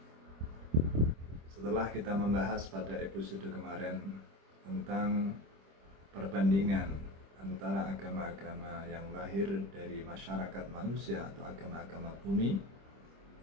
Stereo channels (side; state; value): left; late; 25 ms